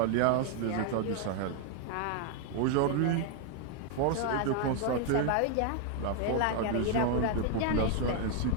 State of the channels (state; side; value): different; both; correlation 0.00